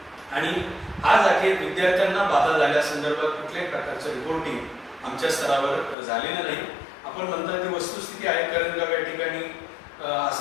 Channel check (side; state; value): right; drops out; at 6.0 s